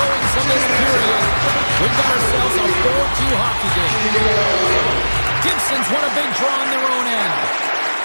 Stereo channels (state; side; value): inverted; both; correlation -1.00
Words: in this period. We've got ourselves a 4-2 hockey game. Gibson's won a big draw on their own end.